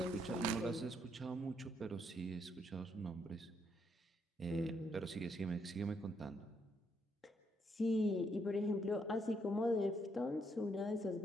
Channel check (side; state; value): both; normal; correlation 0.74